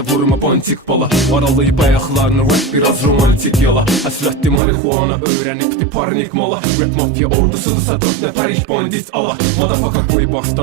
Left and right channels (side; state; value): left; drops out; at 4.6 s